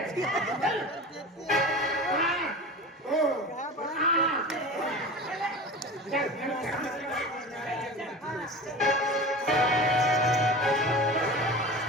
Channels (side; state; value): both; normal; correlation 0.32